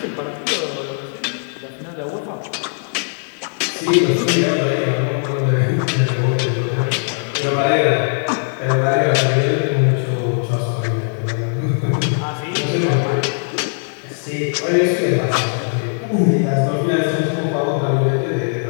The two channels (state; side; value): silent; right; 60 dB below the other